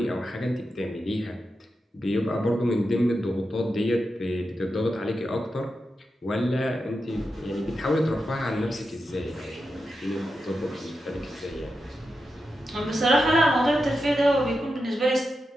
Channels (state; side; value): normal; both; correlation 0.89